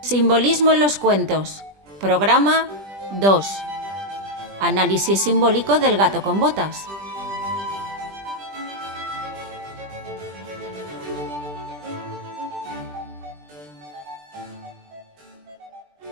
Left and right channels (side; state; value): left; late; 20 ms